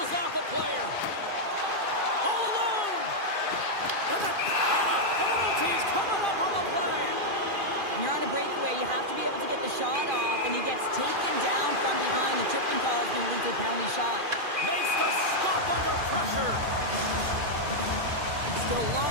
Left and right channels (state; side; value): late; left; 2.4 ms